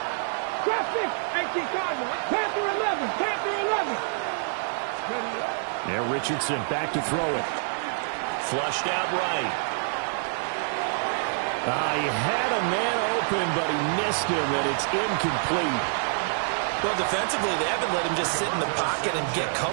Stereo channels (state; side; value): silent; left; 60 dB below the other